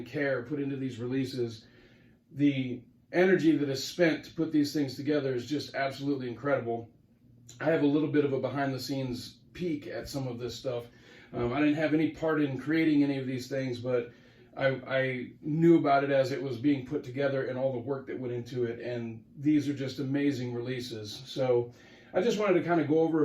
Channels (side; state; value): both; identical; correlation 1.00